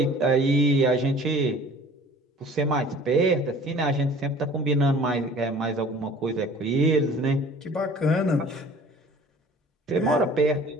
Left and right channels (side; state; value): both; normal; correlation 0.48